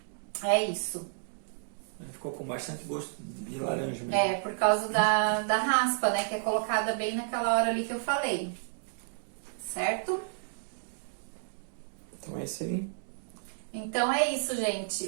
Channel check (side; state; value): left; silent; digital silence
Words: isso. Ficou com bastante gosto de laranja mesmo. É, por causa da raspa, né? Que é colocada bem naquela hora ali que eu falei. Certo? Então é isso aí. Então é isso,